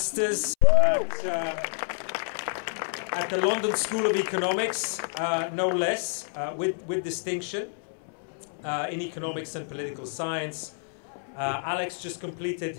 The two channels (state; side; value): silent; right; 59 dB below the other